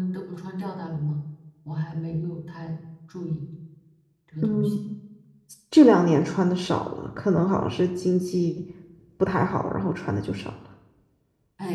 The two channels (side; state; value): both; identical; correlation 1.00